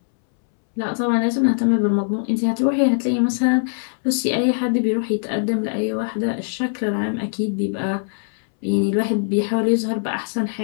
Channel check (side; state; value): right; silent; 64 dB below the other